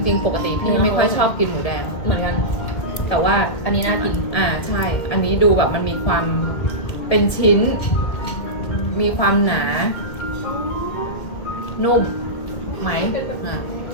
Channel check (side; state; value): right; late; 2.3 ms